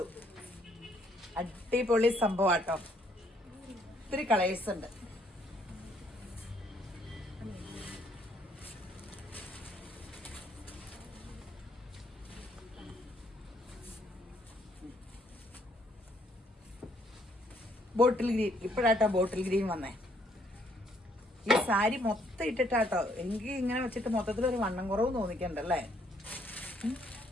അടിപൊളി സംഭവമാട്ടോ. ഒത്തിരി കളേഴ്സ് ഉണ്ട്. ബോട്ടിൽ ഗ്രീൻ, ഇപ്പോഴാട്ടോ ബോട്ടിൽ ഗ്രീൻ വന്നേ. ഈ സാരി മൊത്തം ഇട്ടിട്ടാട്ടോ. എനിക്ക് ഇങ്ങനെ വെച്ചിട്ട് മൊത്തത്തിലൊരു വണ്ണം കുറവ് തോന്നിക്കണ്ടല്ലേ.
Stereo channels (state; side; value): normal; both; correlation 0.68